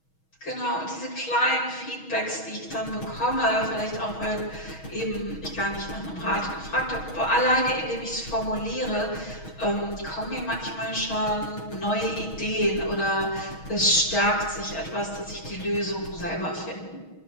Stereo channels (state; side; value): late; right; 6.3 ms